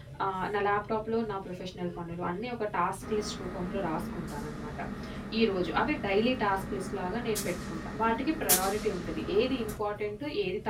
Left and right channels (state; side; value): identical; both; correlation 1.00